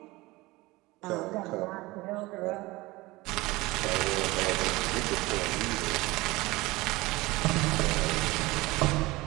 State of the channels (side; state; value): left; quieter; 21.0 dB